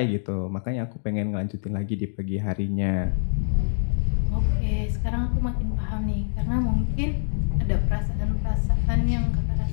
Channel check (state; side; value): silent; right; digital silence